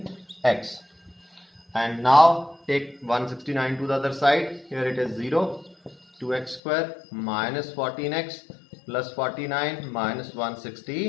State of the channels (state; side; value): drops out; right; at 6.6 s